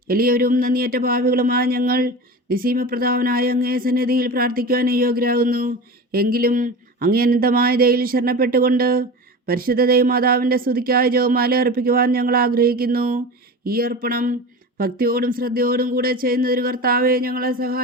എളിയവരും നന്ദിയേറ്റ പാപികളുമായ ഞങ്ങൾ നിസീമപ്രധാവനായ അങ്ങേ സന്നിധിയിൽ പ്രാർത്ഥിക്കുവാൻ യോഗ്യരാകുന്നു. എങ്കിലും അങ്ങേ അനന്തമായ ദയയിൽ ശരണപ്പെട്ടുകൊണ്ട് പരിശുദ്ധ ദൈവമാതാവിൻ്റെ സ്തുതിക്കായി ജപമാല അർപ്പിക്കുവാൻ ഞങ്ങൾ ആഗ്രഹിക്കുന്നു. ഈ അർപ്പണം ഭക്തിയോടും ശ്രദ്ധയോടും കൂടെ ചെയ്യുന്നതിന് കർത്താവെ ഞങ്ങളെ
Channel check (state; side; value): normal; both; correlation 0.30